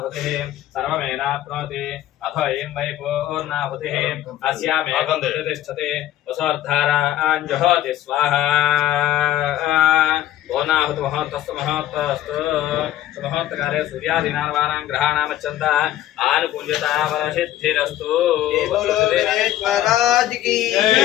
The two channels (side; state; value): right; quieter; 13.2 dB